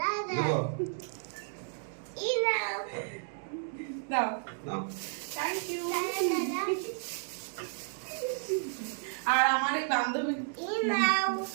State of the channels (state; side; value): silent; left; digital silence